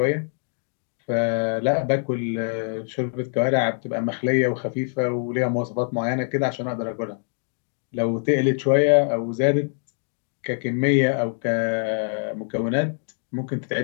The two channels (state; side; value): silent; right; digital silence